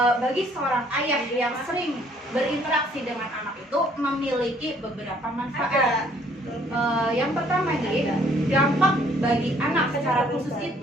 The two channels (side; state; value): both; normal; correlation 0.62